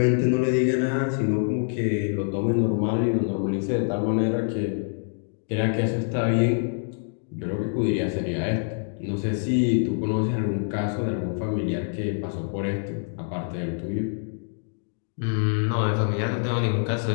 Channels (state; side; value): silent; right; digital silence